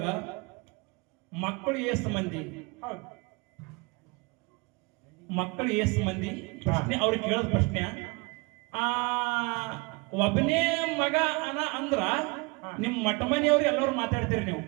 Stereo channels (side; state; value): left; quieter; 27.7 dB